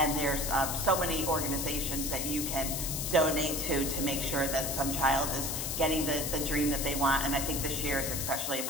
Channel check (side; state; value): left; noise; hiss, 2 dB below the sound